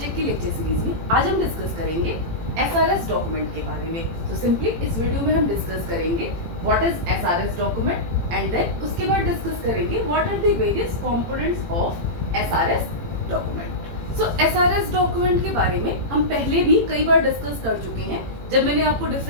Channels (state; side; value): late; left; 18 ms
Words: की लेक्चर सीरीज में आज हम डिस्कस करेंगे एसआरएस डॉक्यूमेंट के बारे में। तो सिंपली इस वीडियो में हम डिस्कस करेंगे what is SRS document and then उसके बाद डिस्कस करेंगे what are the various components of SRS document. So SRS document के बारे में हम पहले भी कई बार डिस्कस कर चुके हैं जब मैंने आपको